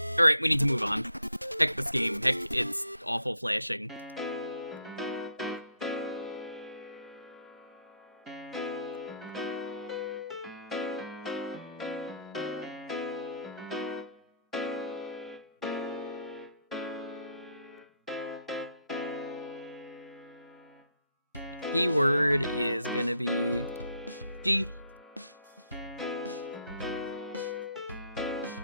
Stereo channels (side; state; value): both; inverted; correlation -0.70